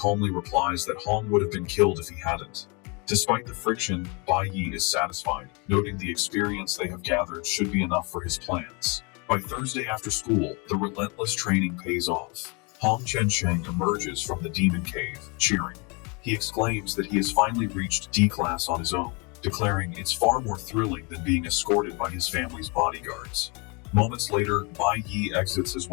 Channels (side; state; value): right; quieter; 30.9 dB